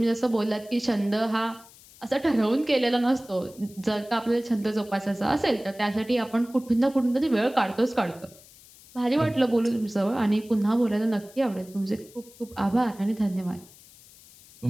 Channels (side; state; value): left; noise; hiss, 23 dB below the sound